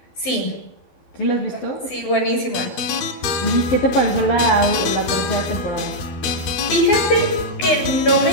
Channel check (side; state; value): right; late; 12 ms